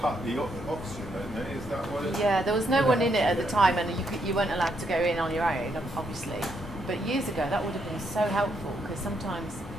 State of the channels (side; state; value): both; normal; correlation 0.76